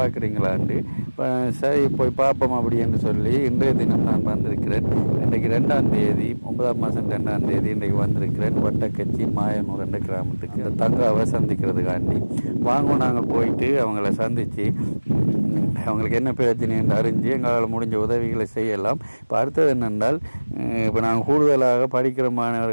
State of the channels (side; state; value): both; inverted; correlation -1.00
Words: இப்போ சரி போய் பார்ப்போம் அப்படின்னு சொல்லி இன்றைய தினம் நான் வந்திருக்கிறேன். இன்றைக்கு 2ஆம் தேதி 9ஆம் மாதம் 2ஆம் தேதி இன்றைக்கு வந்திருக்கிறேன் வட்டக்கச்சி மாயனூர் என்ற கிராமத்துக்கு தங்காவை சந்திக்கிறதுக்காண்டி. வாங்க நாங்கள் போயிட்டு அவங்கள சந்தித்து அவங்களுக்கு என்ன பிரச்சனை என்று அறிஞ்சு எங்களால் முடிஞ்ச உதவிகளை செய்யலாம். இப்போ அடுத்தது என்னென்றால், இப்போ நாங்கள் கூடுதலாக படிக்கிற